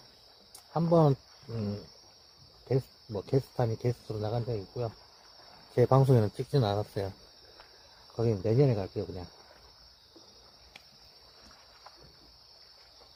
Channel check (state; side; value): identical; both; correlation 1.00